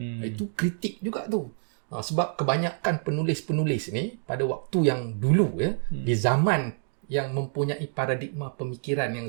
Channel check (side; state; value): left; silent; 60 dB below the other